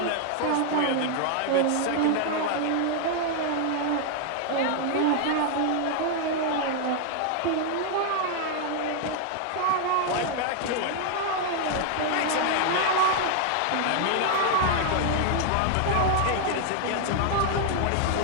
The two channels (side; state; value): both; different; correlation 0.00